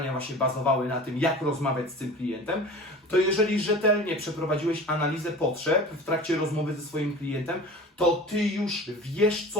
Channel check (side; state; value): both; normal; correlation 0.38